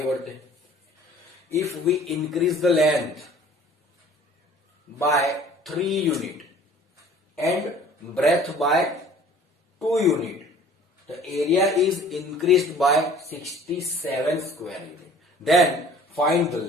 बढ़ते हैं। If we increase the length by 3 unit and breadth by 2 unit, the area is increased by 67 square unit. Then find the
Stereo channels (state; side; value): normal; both; correlation 0.50